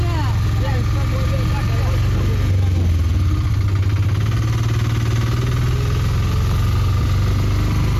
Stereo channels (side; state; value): both; identical; correlation 1.00